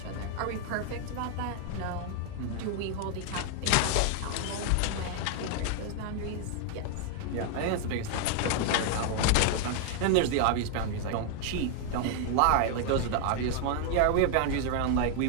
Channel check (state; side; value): different; both; correlation 0.00